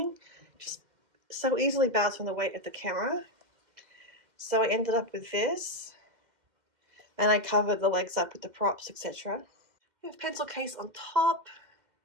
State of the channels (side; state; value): left; late; 2.1 ms